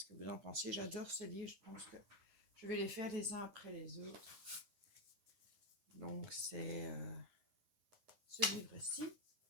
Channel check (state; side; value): late; left; 9.8 ms